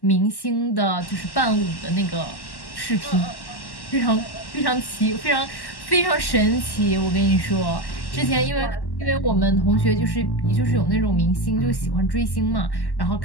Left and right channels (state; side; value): late; right; 1.1 ms